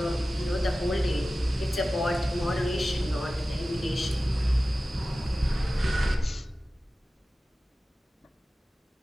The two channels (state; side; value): normal; both; correlation 0.96